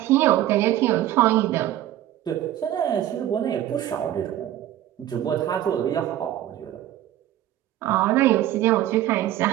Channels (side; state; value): left; quieter; 13.0 dB